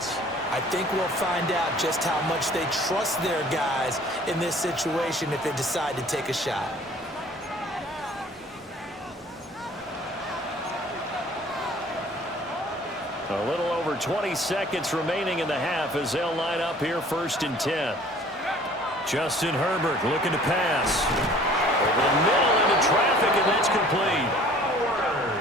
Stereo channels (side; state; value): both; normal; correlation 0.51